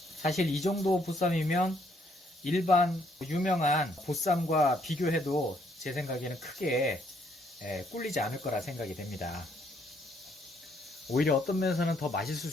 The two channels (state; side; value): normal; both; correlation 0.69